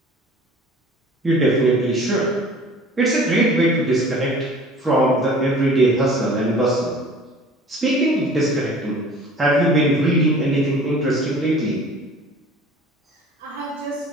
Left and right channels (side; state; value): both; normal; correlation 0.46